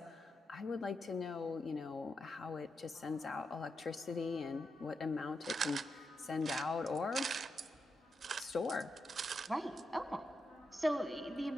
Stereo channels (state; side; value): normal; both; correlation 0.85